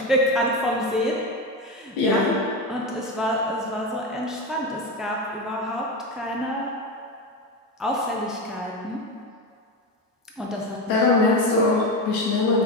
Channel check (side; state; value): both; normal; correlation 0.17